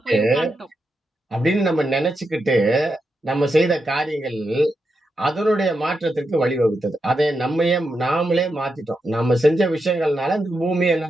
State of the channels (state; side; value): normal; both; correlation 0.86